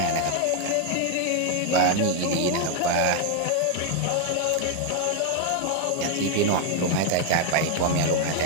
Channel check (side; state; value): both; different; correlation 0.01